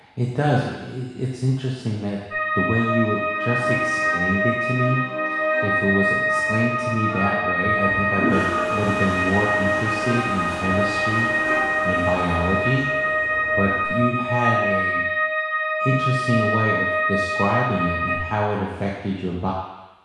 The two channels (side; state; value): both; identical; correlation 1.00